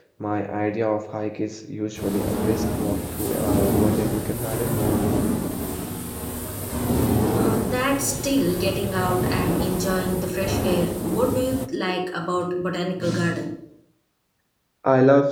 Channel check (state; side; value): identical; both; correlation 1.00